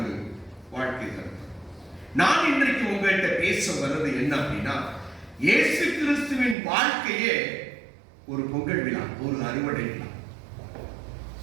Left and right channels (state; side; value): drops out; left; at 6.6 s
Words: வாழ்க்கை கருத்து. நான் இன்றைக்கு உங்கள்கிட்ட பேச வர்றது என்ன அப்படின்னா, இயேசு கிறிஸ்துவின் வாழ்க்கையே ஒரு பொங்கல் விழா, ஒரு அறுவடை விழா.